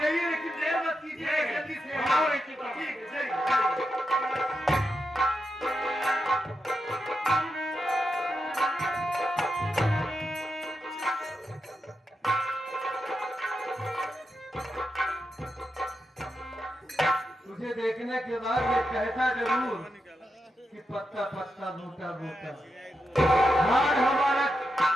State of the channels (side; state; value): both; normal; correlation 0.86